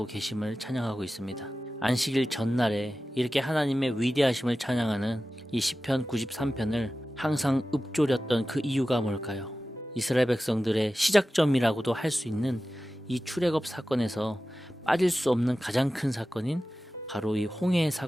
계심을 찬양하고 있습니다. 안식일 전날에 이렇게 하나님의 위대하심을 찬양하는 이 시편 93편을 항상 읊조렸던 그 이유가 뭘까요? 이스라엘 백성들의 시작점이라고도 할 수 있는 이 출애굽 사건에서 빠질 수 없는 가장 큰 사건인 바로 이 홍해의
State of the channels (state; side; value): normal; both; correlation 0.95